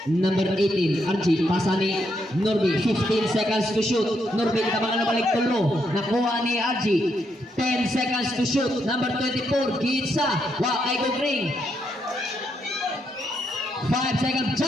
Number 18, RG, pasa ni Norby, 15 seconds to shoot. Norby, tabangan na balik tulo. Nakuha ni RG, 10 seconds to shoot. Number 24, Gitsa, ay go green. 5 seconds,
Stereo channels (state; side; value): normal; both; correlation 0.78